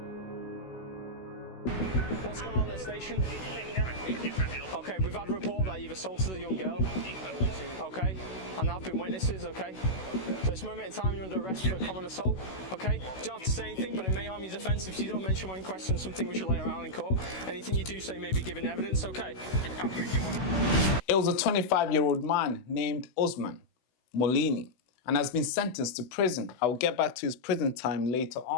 What's going on at the station? Okay, we've had a report that you've assaulted a young girl. Okay, and there have been witnesses, okay? So this moment in time you're under arrest for a common assault, okay? You don't have to say anything, but it may harm your defence if you don't mention when questioned something we should lay around in court. Anything you do say may be given evidence, okay? It was a 25-year-old man named Usman Molini and has been sentenced to prison. I will get back to his prison time later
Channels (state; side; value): late; right; 16 ms